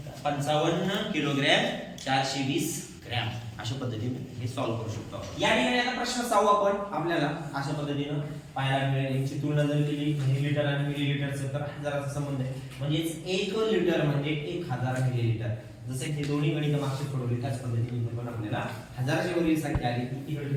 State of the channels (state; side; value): identical; both; correlation 1.00